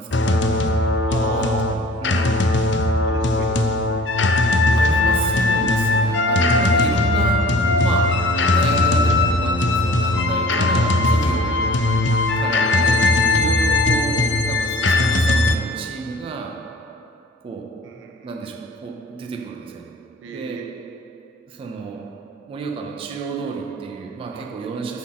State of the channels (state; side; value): normal; both; correlation 0.47